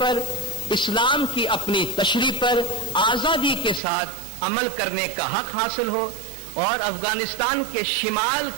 اسلام کی اپنی تشریح پر آزادی کے ساتھ عمل کرنے کا حق حاصل ہو، اور افغانستان کے شمال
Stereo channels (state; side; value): drops out; left; at 3.8 s